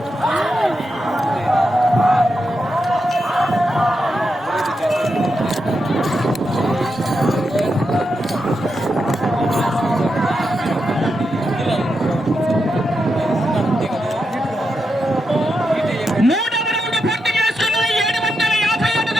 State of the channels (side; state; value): both; normal; correlation 0.85